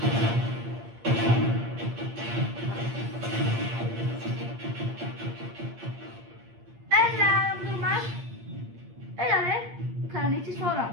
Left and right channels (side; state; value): left; late; 8.7 ms